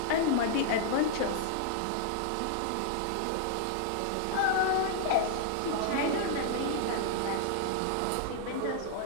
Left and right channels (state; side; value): different; both; correlation -0.01